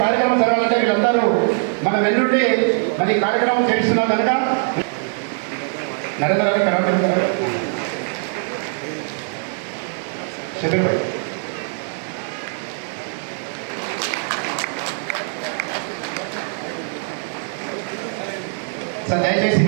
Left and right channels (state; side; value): silent; left; 56 dB below the other